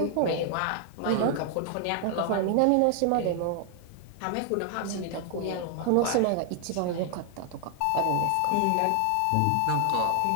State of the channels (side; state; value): both; different; correlation 0.00